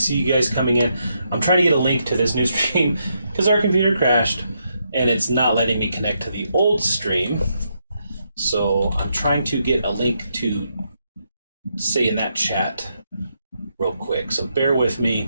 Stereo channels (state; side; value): inverted; both; correlation -0.80